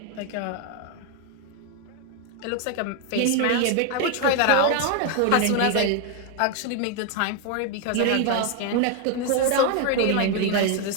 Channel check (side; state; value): both; different; correlation 0.01